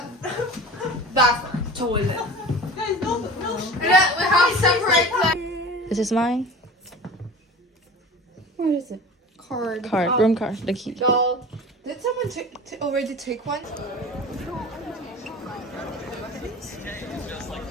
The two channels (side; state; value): both; normal; correlation 0.37